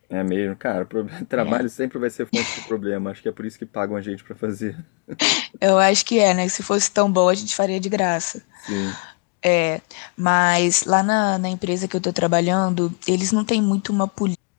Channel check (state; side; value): quieter; right; 34.2 dB